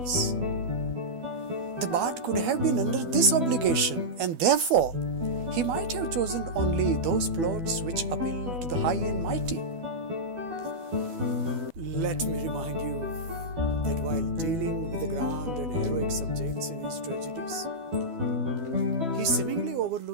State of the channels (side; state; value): left; late; 12 ms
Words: The bard could have been under this obligation, and therefore he might have chosen only those plots which appeal to the high and mighty. Let me remind you that while dealing with the grand and heroic subjects in his tragedies, he seemingly